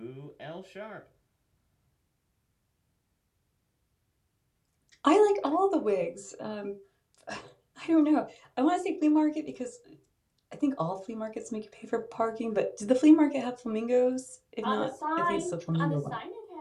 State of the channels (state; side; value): identical; both; correlation 1.00